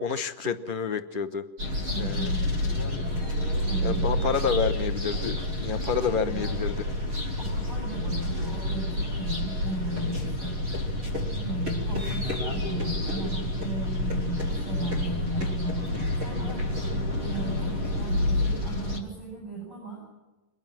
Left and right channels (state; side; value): late; left; 11 ms